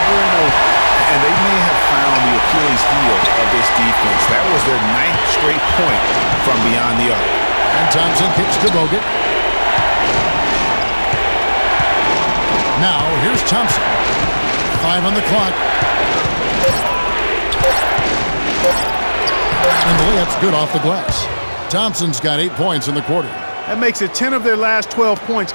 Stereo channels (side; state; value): both; inverted; correlation -1.00